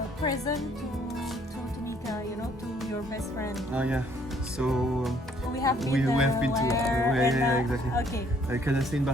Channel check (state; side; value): normal; both; correlation 0.63